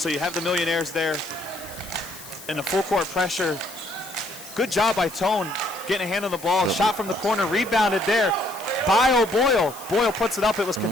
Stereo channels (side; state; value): left; noise; hiss, 16 dB below the sound